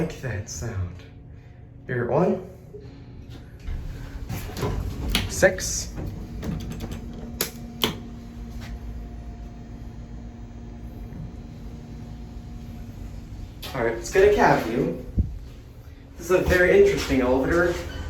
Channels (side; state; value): both; identical; correlation 1.00